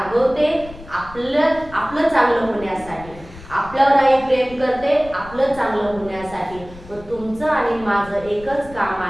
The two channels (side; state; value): left; noise; rumble, 18 dB below the sound